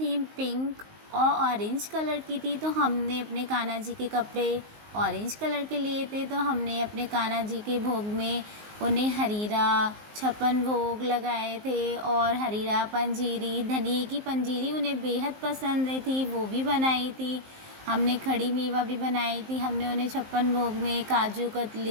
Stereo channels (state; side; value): late; left; 19 ms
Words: पिंक और ऑरेंज कलर की थी, तो हमने अपने कान्हा जी के कपड़े ऑरेंज कलर के लिए थे। तो हमने अपने कान्हा जी के भोग में उन्हें हरीरा, छप्पन भोग लगाए थे और हरीरा पंजीरी, धनिए की पंजीरी उन्हें बेहद पसंद आई थी, वो भी बनाई थी। हमने खड़ी मेवा भी बनाई थी। हमने उन्हें छप्पन भोग में काजू